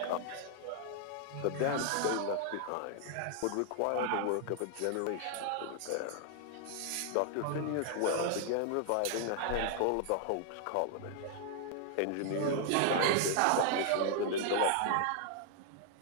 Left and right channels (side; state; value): both; different; correlation 0.00